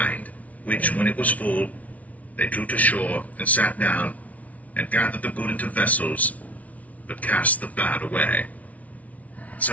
which, when it was full, they drew to shore, and sat down, and gathered the good into vessels, but cast the bad away.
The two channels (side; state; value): right; late; 0.069 ms